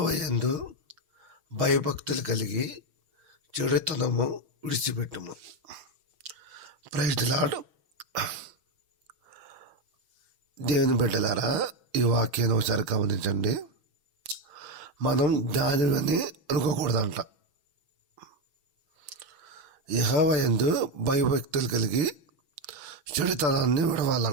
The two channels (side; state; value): left; late; 6.2 ms